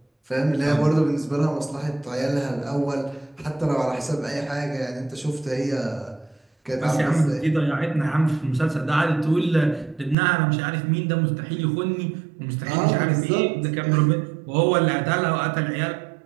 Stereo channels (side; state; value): left; drops out; at 10.2 s